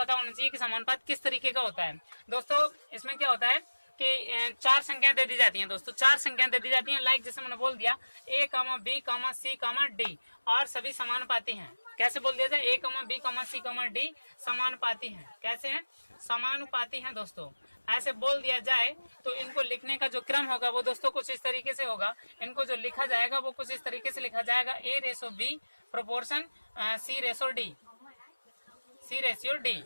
होना चाहिए कि समानुपात किस तरीके का होता है। दोस्तों इसमें क्या होता है कि चार संख्याएं दे दी जाती हैं दोस्तों। चार संख्याएं दे दी जाती हैं, लाइक जैसे मैंने बोल दिया A, B, C, D और सभी समानुपाती हैं। कैसे बोल दिया जाए, A, B, C, D समानुपाती हैं। कैसे हैं? समानुपाती हैं दोस्तों। ऐसे बोल दिया जाए तो इनको लिखने का जो क्रम होगा वो दोस्तों कुछ इस तरीके से होगा। इनको जो लिखा जाएगा वो कुछ इस तरीके से लिखा जाएगा A/B प्रोपोर्शन C/D।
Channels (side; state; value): both; inverted; correlation -1.00